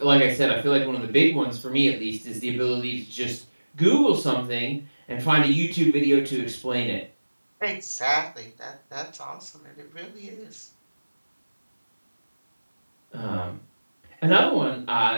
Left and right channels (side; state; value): both; inverted; correlation -1.00